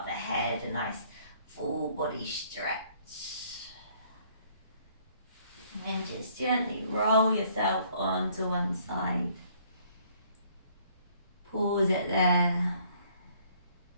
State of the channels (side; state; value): both; inverted; correlation -0.62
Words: the head, a nice full body stretch. And then just gently roll yourself onto one side. Pause it there.